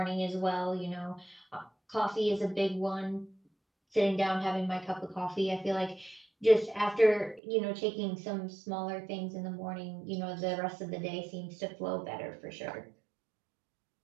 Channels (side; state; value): left; drops out; at 7.4 s